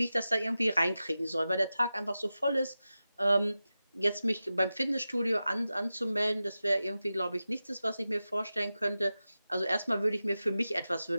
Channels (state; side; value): inverted; both; correlation -0.93